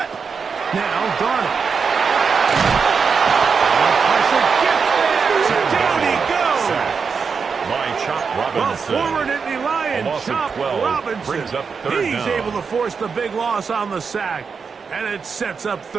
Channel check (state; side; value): quieter; left; 5.6 dB